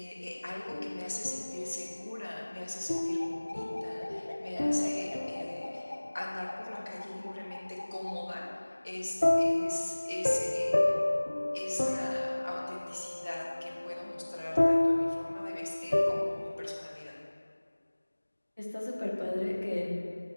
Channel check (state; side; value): inverted; both; correlation -1.00